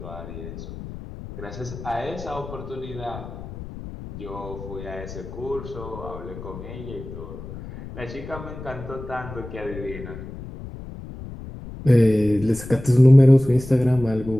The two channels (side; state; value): left; noise; rumble, 12 dB below the sound